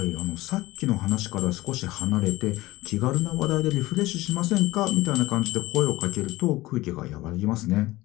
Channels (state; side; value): quieter; right; 18.7 dB